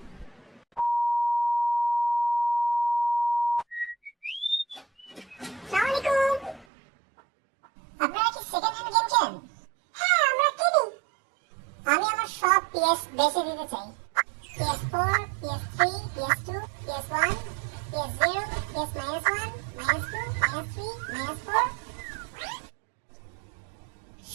আসসালামু আলাইকুম। আপনারা কি সেকেন্ড হ্যান্ড গেম খেলেন? হ্যাঁ, আমরা কিনি। আমি আমার সব PS বেচে দিতে চাই। PS4, PS3, PS2, PS1, PS0, PS-1, -2, -3, -4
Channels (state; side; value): drops out; left; at 6.7 s